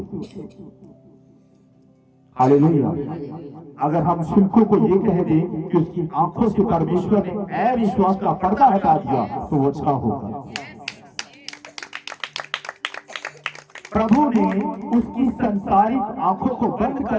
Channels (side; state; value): both; identical; correlation 1.00